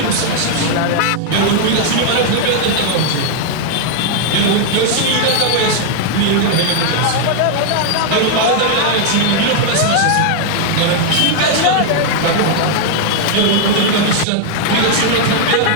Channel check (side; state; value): both; different; correlation 0.00